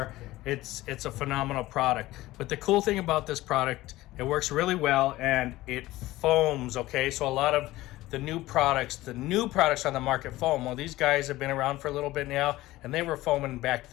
It's a phenomenal product. But the cool thing about this product, it works really well, and it foams, okay? So a lot of the new products on the market foam. Well, these guys have been around for a little bit now, and they were foaming back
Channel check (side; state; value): right; quieter; 17.4 dB